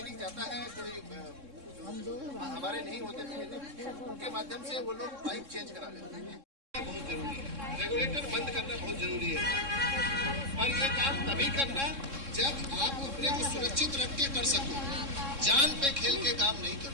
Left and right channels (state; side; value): late; left; 3.6 ms